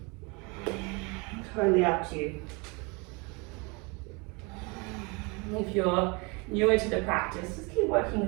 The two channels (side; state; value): left; quieter; 29.1 dB